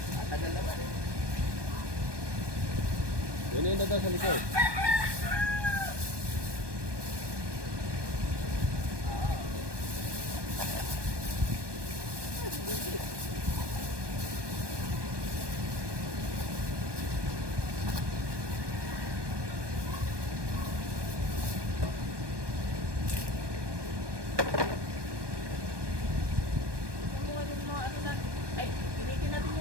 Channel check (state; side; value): late; left; 1.2 ms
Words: Tagal naman. Yun na daw sa likod. Ay, pilitin natin